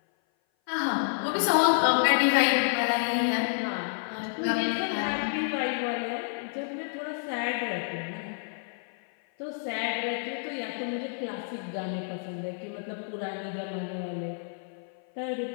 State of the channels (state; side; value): silent; right; 56 dB below the other